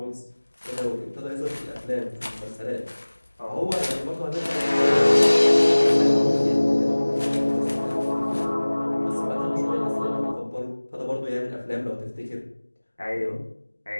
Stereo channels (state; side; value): inverted; both; correlation -1.00